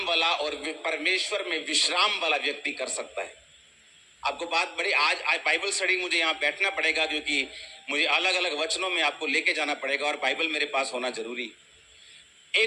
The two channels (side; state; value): both; identical; correlation 1.00